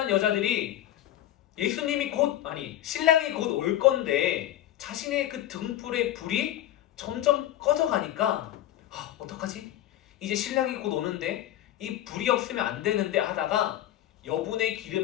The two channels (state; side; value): quieter; right; 13.1 dB